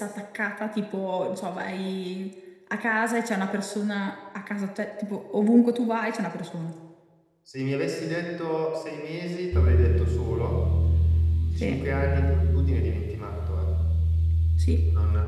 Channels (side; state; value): both; identical; correlation 1.00